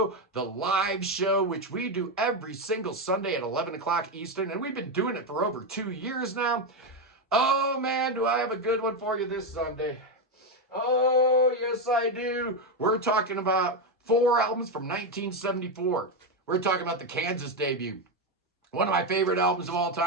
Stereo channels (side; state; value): both; normal; correlation 0.08